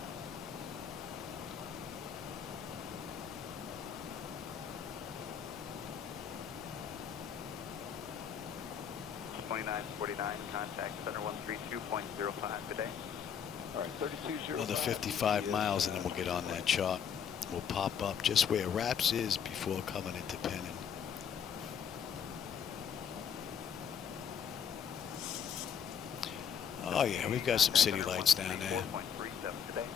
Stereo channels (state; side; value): quieter; right; 7.9 dB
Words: 2949, contact center 132.05 today. All right, 3205. Another 55 miles and then we'll get on that chart. We'll pop up just where Raps is before coming into Penn. Oh yeah, we've got some city lights down there. 4.37 today.